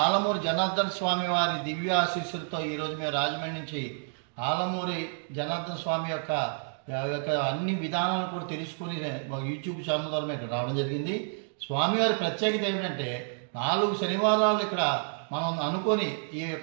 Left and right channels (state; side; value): silent; left; 58 dB below the other